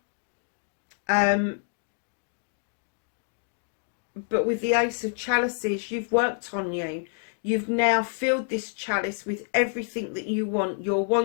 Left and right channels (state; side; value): silent; right; 60 dB below the other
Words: but with the Ace of Chalices, you've worked on you. You've now filled this chalice with everything that you want. Your